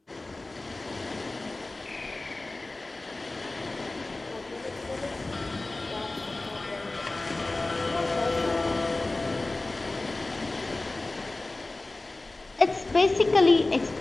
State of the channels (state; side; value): quieter; right; 3.0 dB